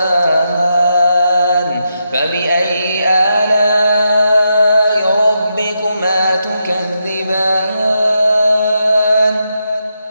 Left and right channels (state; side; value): inverted; both; correlation -0.83